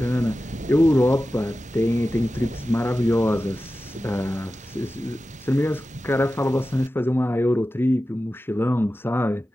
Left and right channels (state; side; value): normal; both; correlation 0.94